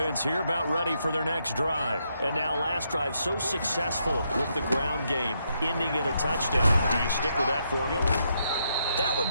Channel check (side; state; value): both; inverted; correlation -0.78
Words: here about ready for their next drive. And now last drive so successful with the ground game, ending in a touchdown. Do you stick with that formula? That